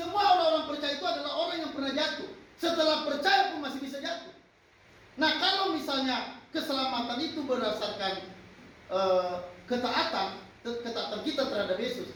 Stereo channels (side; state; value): both; identical; correlation 1.00